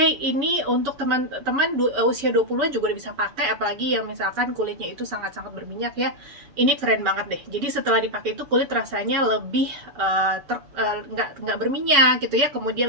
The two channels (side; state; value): left; late; 7.1 ms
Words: ini untuk teman-teman usia 20-an juga bisa pakai, apalagi yang misalkan kulitnya itu sangat-sangat berminyak ya. Ini keren banget deh. Jadi setelah dipakai itu kulit rasanya lebih nggak berminyak gitu ya,